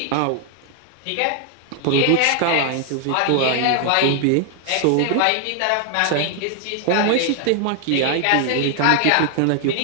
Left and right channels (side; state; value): both; different; correlation 0.00